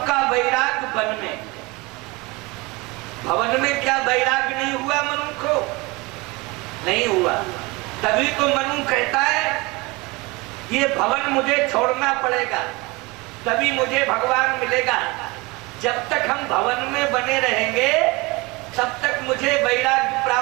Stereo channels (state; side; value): quieter; left; 24.5 dB